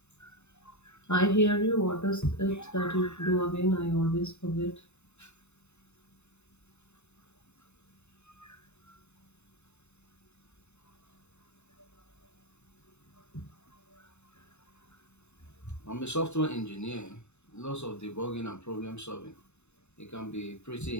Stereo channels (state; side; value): late; right; 0.82 ms